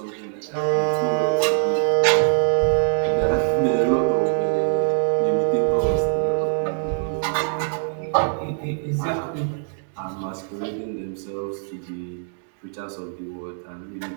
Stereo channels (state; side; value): silent; left; digital silence